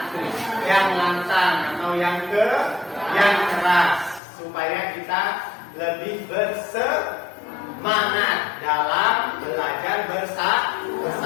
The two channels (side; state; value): right; drops out; at 4.2 s